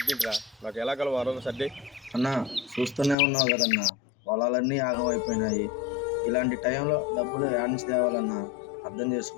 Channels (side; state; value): right; drops out; at 3.2 s